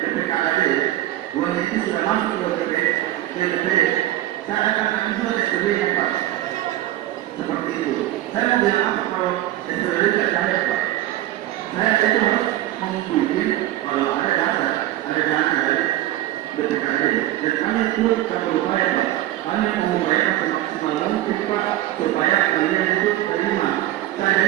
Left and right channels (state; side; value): quieter; left; 14.5 dB